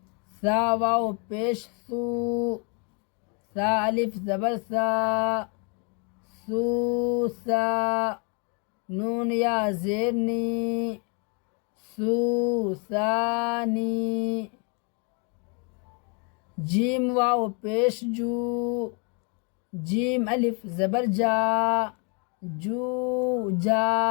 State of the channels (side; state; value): right; quieter; 35.5 dB